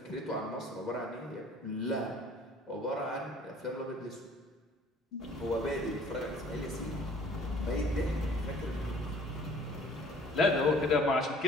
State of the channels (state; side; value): normal; both; correlation 0.53